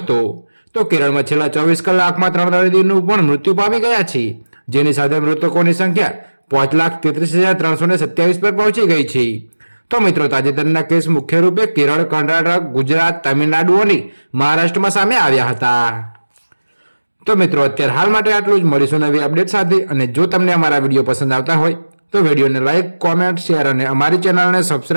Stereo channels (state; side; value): inverted; both; correlation -1.00